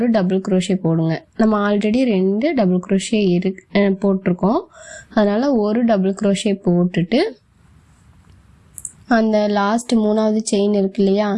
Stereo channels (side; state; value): both; identical; correlation 1.00